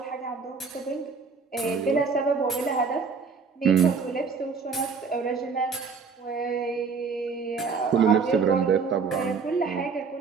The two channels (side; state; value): left; quieter; 5.3 dB